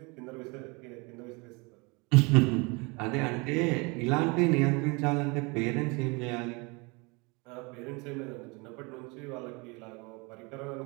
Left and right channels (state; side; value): quieter; left; 28.5 dB